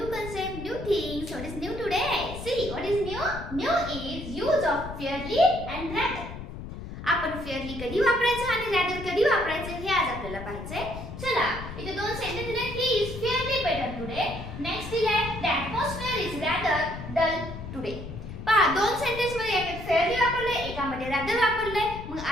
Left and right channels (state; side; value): noise; left; rumble, 10 dB below the sound